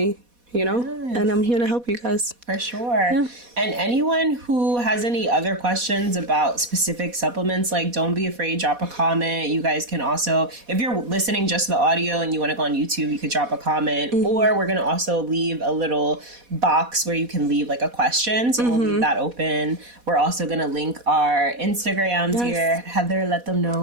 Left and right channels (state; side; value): late; left; 4.1 ms